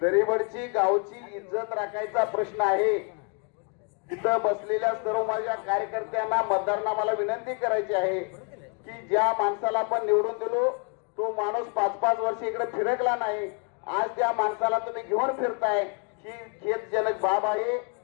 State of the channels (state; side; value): quieter; right; 37.1 dB